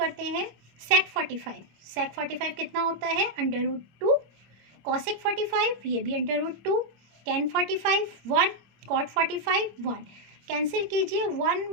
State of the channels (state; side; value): late; left; 25 ms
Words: हैं। sec 45 कितना होता है √2, cosec 45 ये भी √2, tan 45 1, cot 45 1, कैंसिल कीजिए 1